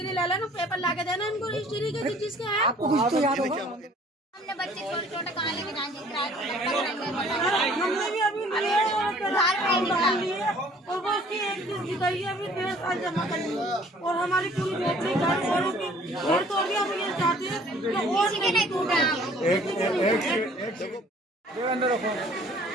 ले लेना, पेपर ला के देना इनको रजिस्ट्री के जिसके है। आपको कुछ तो याद होगा। हमने बच्चे छोटे छोटे कहाँ लेके जाएंगे, हमने भी अभी लिए और वो उसकी एक चीज की गई है, अभी 1.5 साल जमा कर ली और हमारी पूरी बेटी घर औरों की घर तोड़ दिया। हम ये चाहते हैं कि और नहीं टूटा।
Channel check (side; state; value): both; normal; correlation 0.55